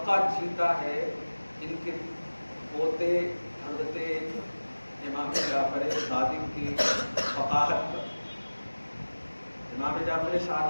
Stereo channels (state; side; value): inverted; both; correlation -1.00